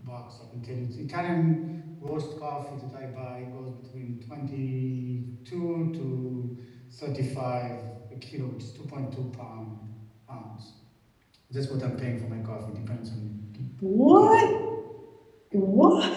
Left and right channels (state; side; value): identical; both; correlation 1.00